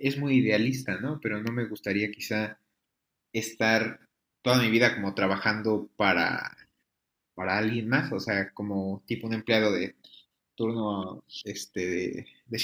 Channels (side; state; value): both; identical; correlation 1.00